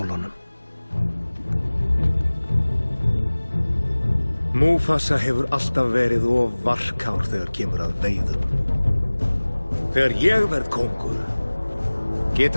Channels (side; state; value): both; inverted; correlation -1.00